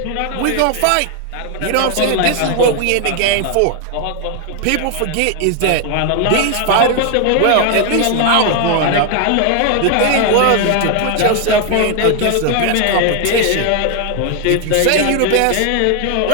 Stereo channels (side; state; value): both; different; correlation 0.01